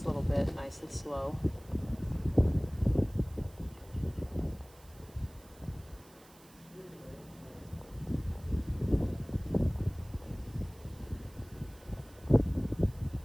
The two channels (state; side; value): noise; right; hiss, 24 dB below the sound